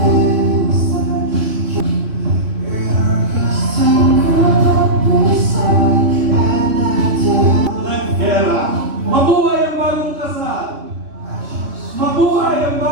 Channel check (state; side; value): late; left; 3.1 ms